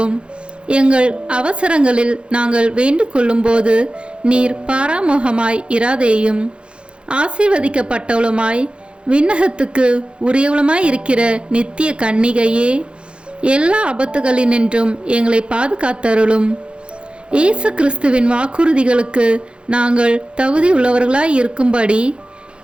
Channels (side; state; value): left; late; 0.057 ms